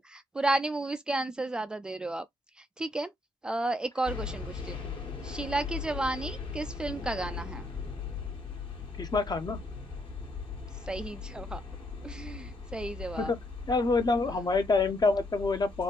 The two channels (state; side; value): normal; both; correlation 0.73